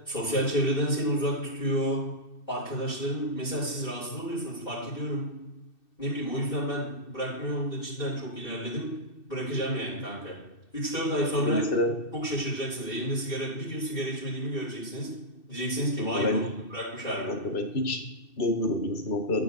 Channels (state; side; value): late; right; 2.6 ms